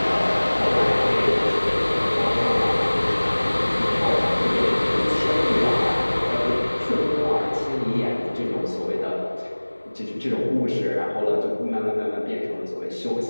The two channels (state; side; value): inverted; both; correlation -1.00